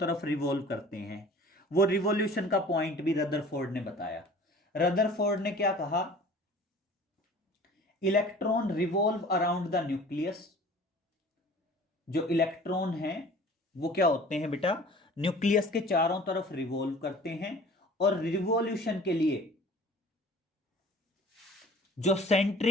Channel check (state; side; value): normal; both; correlation 0.46